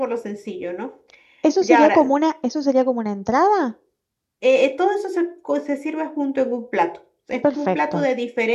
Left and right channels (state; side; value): identical; both; correlation 1.00